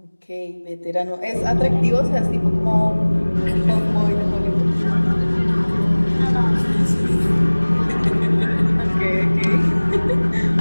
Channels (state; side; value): inverted; both; correlation -1.00